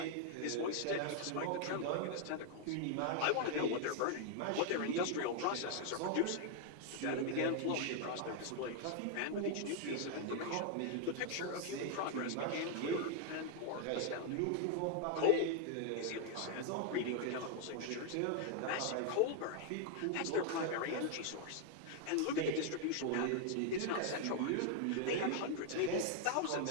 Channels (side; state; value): both; different; correlation 0.00